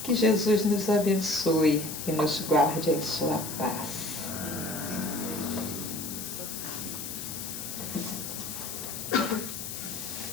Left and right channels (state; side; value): noise; left; hiss, 7 dB below the sound